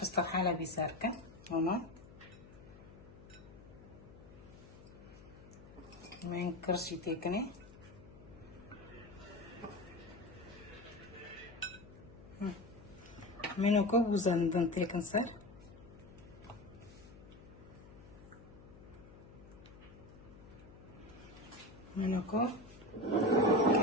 استحالة بيساركة هنا من كرسي تكني منو كوب وزندن تكن صار منو كوب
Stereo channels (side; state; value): left; noise; hum, 19 dB below the sound